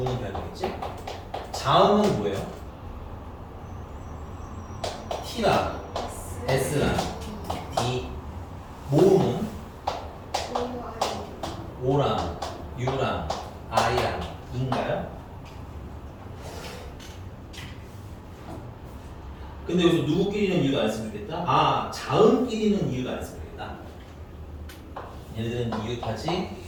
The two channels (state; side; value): identical; both; correlation 1.00